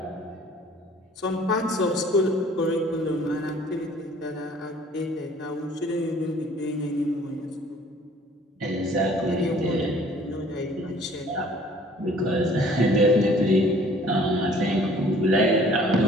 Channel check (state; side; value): normal; both; correlation 0.54